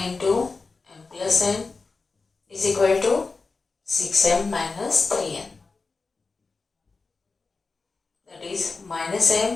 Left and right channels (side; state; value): right; quieter; 4.1 dB